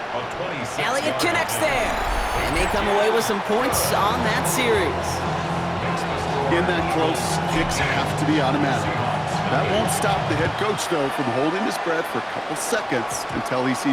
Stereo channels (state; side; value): identical; both; correlation 1.00